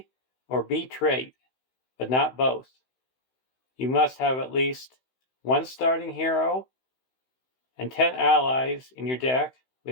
or B trait, but not both. You must have at least 1 starting hero and 10 allies in your deck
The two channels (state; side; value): late; right; 16 ms